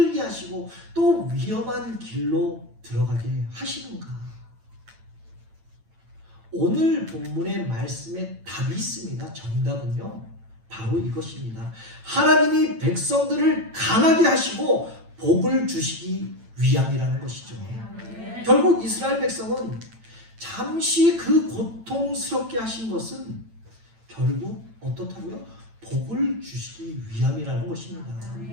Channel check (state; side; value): late; left; 8.9 ms